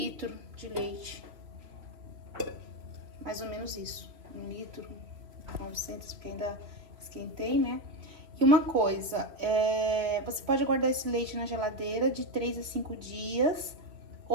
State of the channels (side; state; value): left; late; 3.3 ms